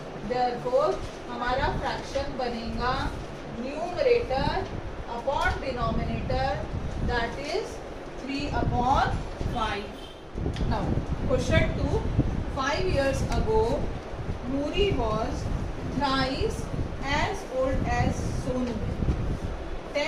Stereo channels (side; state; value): both; identical; correlation 1.00